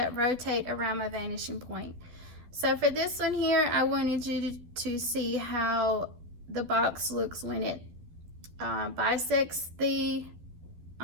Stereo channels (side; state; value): left; late; 12 ms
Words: rotate around my vanishing point. So for this one here, I wanted you to see how the box looks when it bisects the